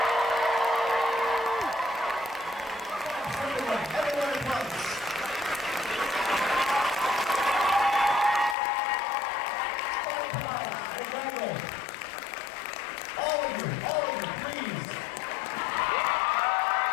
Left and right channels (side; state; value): right; drops out; at 8.6 s